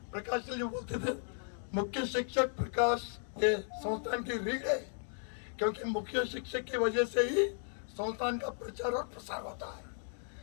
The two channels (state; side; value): silent; right; 54 dB below the other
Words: प्रकाश जी बोलते थे मुख्य शिक्षक प्रकाश ये संस्थान की रीढ़ है, क्योंकि मुख्य शिक्षक की वजह से ही संस्थान का प्रचार और प्रसार होता है.